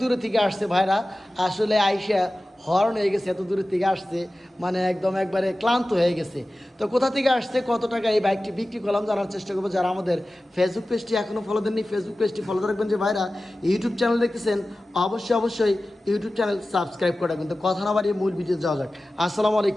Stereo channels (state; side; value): normal; both; correlation 0.96